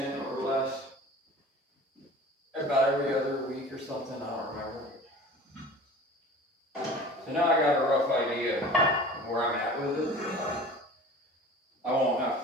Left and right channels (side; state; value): both; normal; correlation 0.41